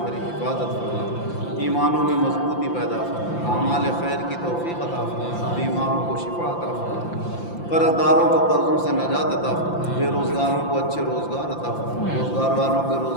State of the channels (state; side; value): late; right; 5.8 ms